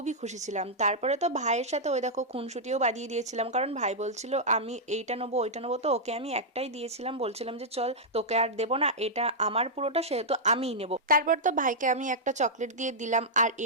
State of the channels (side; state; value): both; normal; correlation -0.07